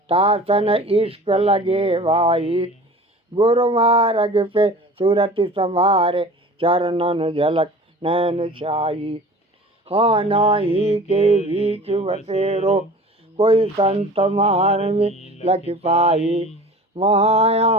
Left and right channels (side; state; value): both; normal; correlation 0.41